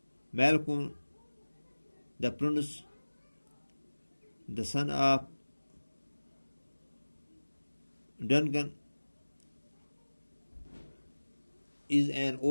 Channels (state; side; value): inverted; both; correlation -1.00